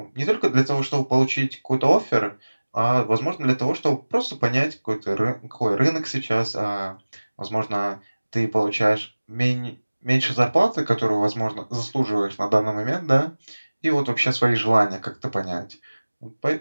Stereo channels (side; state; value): both; inverted; correlation -1.00